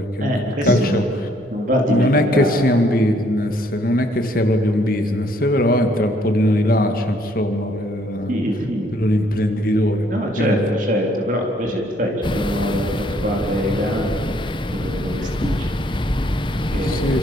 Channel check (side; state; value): both; normal; correlation 0.66